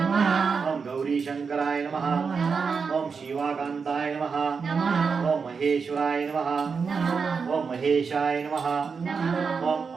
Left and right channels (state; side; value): quieter; left; 5.4 dB